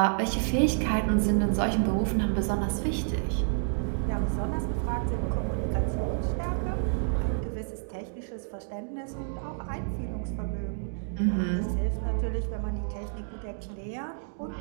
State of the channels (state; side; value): silent; left; digital silence